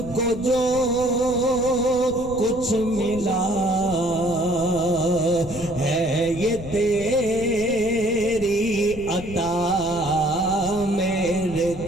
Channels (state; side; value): noise; left; rumble, 13 dB below the sound